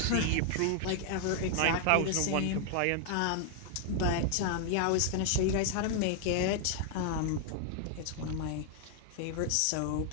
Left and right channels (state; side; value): different; both; correlation 0.00